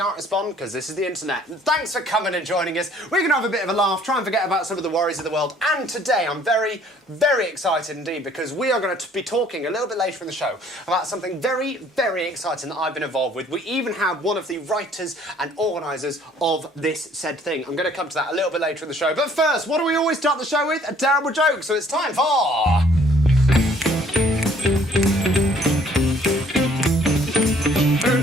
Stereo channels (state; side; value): normal; both; correlation 0.59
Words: respond because this is the internet. Thanks for coming and joining us. We're going to have a bit of a laugh, try and forget about some of the worries of the world. And today I'm very, very excited indeed because we are going to be talking a little bit later in the show about something very, very exciting that I've been involved with. We even have one of the writers and organisers of this said thing. I'm going to come to that a little bit later in the show. But first, what do we always start the show with? A terrible joke. So it's time for...